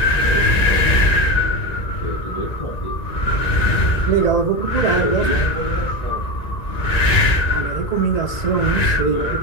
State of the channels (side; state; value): right; late; 1.9 ms